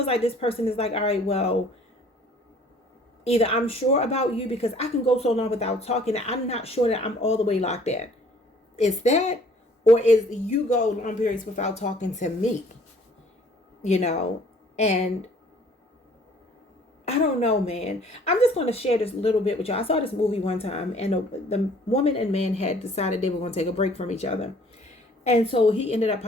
like this person is like, all right, well, either I'm sure about you because I can go so long without talking that I'm not sure that I'm all the way locked in. It's that, or is you go long periods without talking to me, you know, and I don't know, man. I'm just going to share this little bit with y'all. I saw this movie one time, and the woman and man had decided they were going to take a break from each other. And so he ended up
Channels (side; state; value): both; normal; correlation 0.56